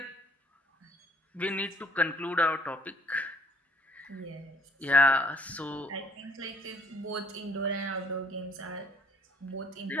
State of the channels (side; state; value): both; normal; correlation 0.58